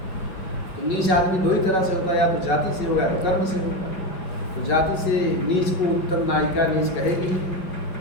तो नीच आदमी दो ही तरह से होता है, या तो जाति से होगा या तो कर्म से होगा। तो जाति से नीच को उत्तम नायिका नीच कहेगी,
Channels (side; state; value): right; late; 5.3 ms